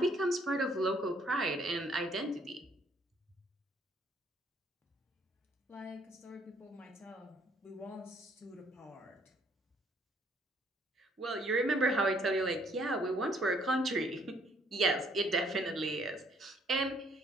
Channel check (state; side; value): normal; both; correlation 0.64